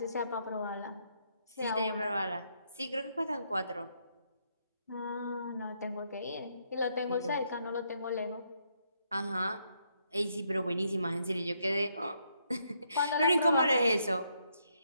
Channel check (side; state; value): both; inverted; correlation -0.75